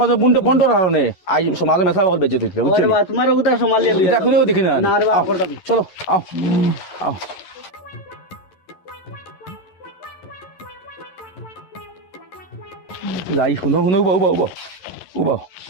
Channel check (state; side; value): late; right; 11 ms